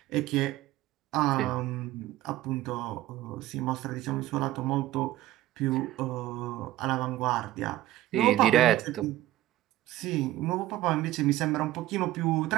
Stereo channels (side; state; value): left; quieter; 15.3 dB